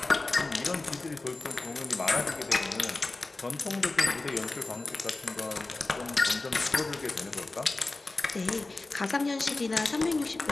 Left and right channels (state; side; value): quieter; right; 3.2 dB